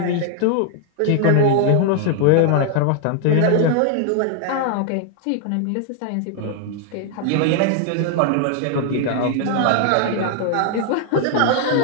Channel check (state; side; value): different; both; correlation 0.00